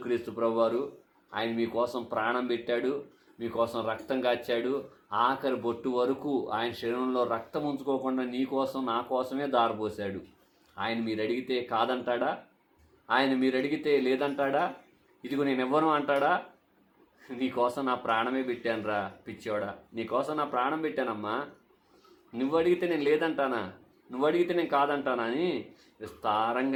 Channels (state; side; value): identical; both; correlation 1.00